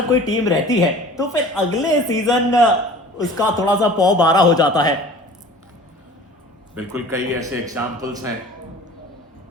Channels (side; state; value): both; normal; correlation 0.44